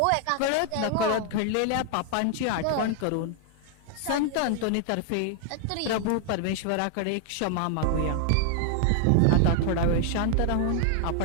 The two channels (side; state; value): both; different; correlation 0.00